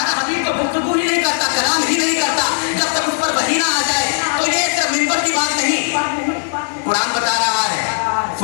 हबीब तो गुफ्तगू ही नहीं करता, कलाम ही नहीं करता जब तक उस पर वही ना आ जाए। तो ये सिर्फ मिंबर की बात नहीं, कुरान बता रहा है,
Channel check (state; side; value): silent; right; 67 dB below the other